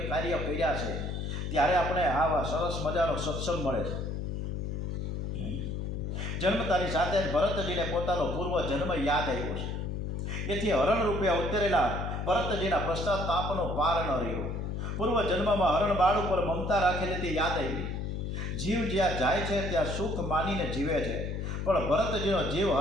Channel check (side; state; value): left; noise; hum, 3 dB below the sound